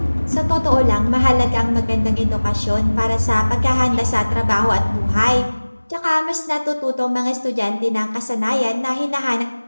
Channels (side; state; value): both; inverted; correlation -1.00